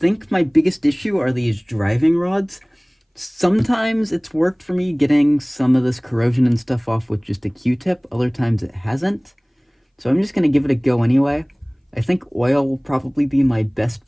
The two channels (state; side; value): identical; both; correlation 1.00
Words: my biggest issue are these driving rods. Sometimes it's worked for me getting some of this corrosion and stuff off with just a Q-tip. Other times it hasn't. So I'm just going to give it a go anyway. I think oil will probably be my best